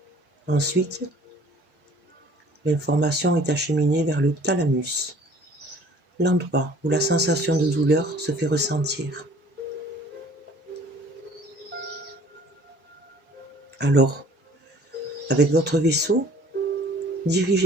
Ensuite, l'information est acheminée vers le thalamus, l'endroit où la sensation de douleur se fait ressentir. Alors, avec votre vaisseau,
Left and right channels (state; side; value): normal; both; correlation 0.52